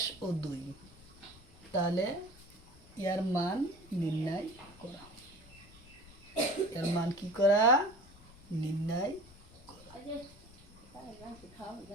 তাহলে এর মান নির্ণয় করা। এর মান কি করা? নির্ণয়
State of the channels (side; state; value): left; noise; rumble, 23 dB below the sound